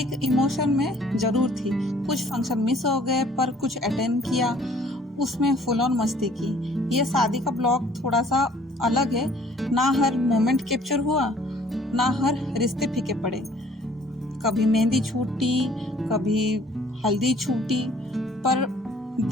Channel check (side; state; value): both; normal; correlation 0.57